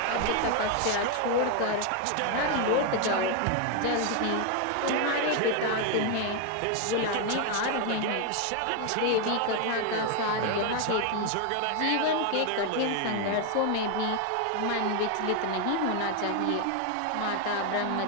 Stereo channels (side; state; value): both; different; correlation 0.01